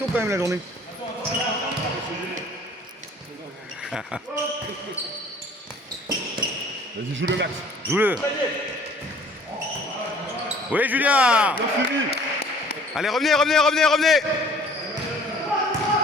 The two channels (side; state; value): both; normal; correlation 0.53